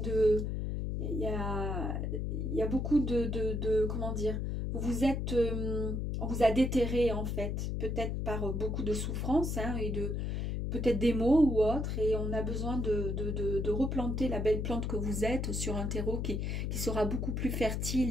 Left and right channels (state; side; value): noise; left; hum, 1 dB below the sound